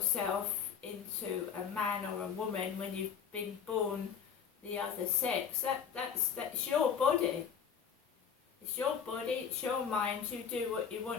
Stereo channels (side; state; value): right; quieter; 7.4 dB